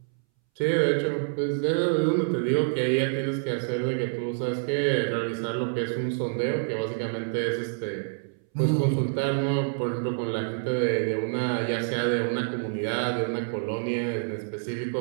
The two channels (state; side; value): silent; left; 60 dB below the other